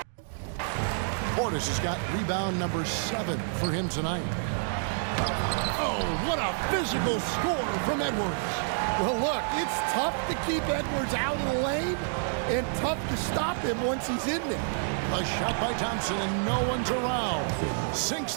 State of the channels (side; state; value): left; silent; digital silence